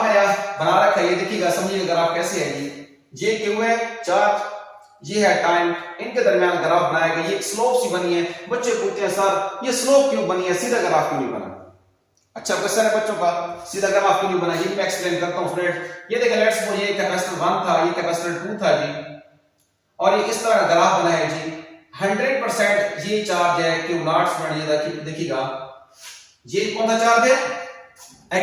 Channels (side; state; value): both; identical; correlation 1.00